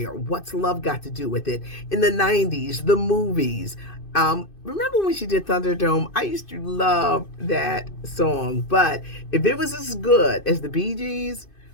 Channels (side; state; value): right; late; 2.5 ms